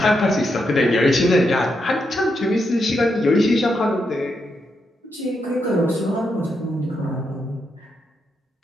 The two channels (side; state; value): both; normal; correlation 0.82